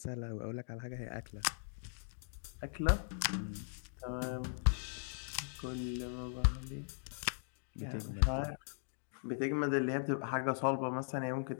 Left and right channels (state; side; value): silent; right; digital silence